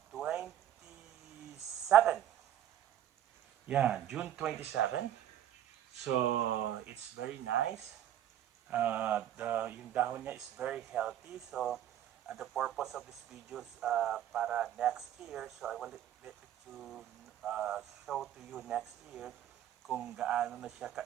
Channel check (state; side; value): quieter; left; 11.1 dB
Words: 27. Yeah, June 27. So it's very nice. Yung dahon niya is very healthy. So the purpose of this video is para next year. So I will let you show to you next year kung gaano na siya